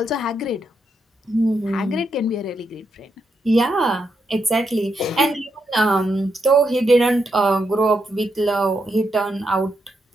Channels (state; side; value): normal; both; correlation 0.82